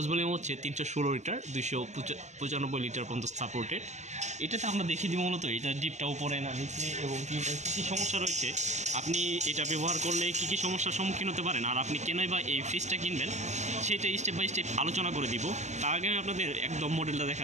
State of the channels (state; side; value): late; left; 0.33 ms